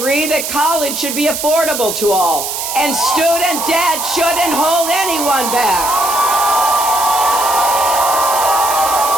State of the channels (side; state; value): right; noise; hiss, 4 dB below the sound